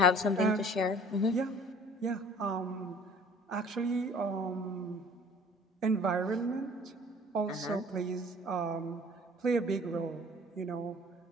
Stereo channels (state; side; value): normal; both; correlation 0.50